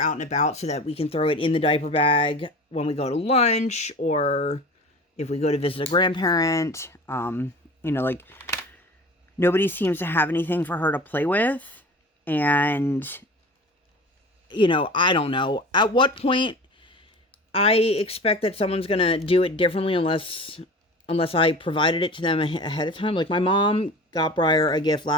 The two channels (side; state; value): both; normal; correlation 0.37